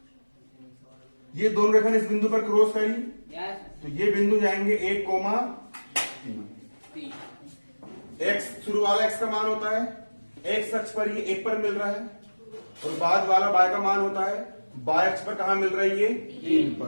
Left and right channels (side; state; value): both; inverted; correlation -1.00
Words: ये दोनों रेखा इस बिंदु पर क्रॉस करी, तो ये बिंदु जाएंगे 1, 3। x शुरू वाला x का मान होता है, x अक्ष पर ये 1 पर मिल रहा है, और बाद वाला y का मान होता है y अक्ष पर कहां मिल रहा है? ये 3